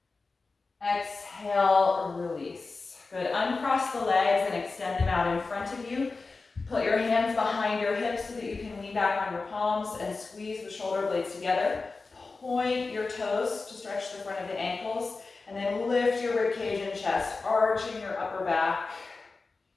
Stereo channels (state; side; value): quieter; right; 3.9 dB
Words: Exhale, release. Good, uncross the legs and extend them out in front of you. Put your hands behind your hips so that you can lean back on your palms and squeeze the shoulder blades together. Point your toes to stretch the front of the ankles, and then lift your ribcage and chest, arching your upper back.